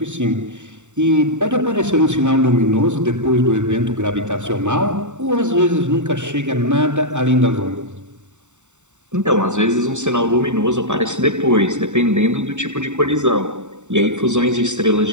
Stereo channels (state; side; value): late; left; 0.84 ms